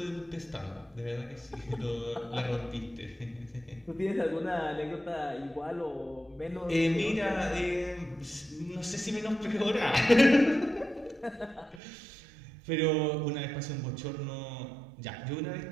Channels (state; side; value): drops out; left; at 11.8 s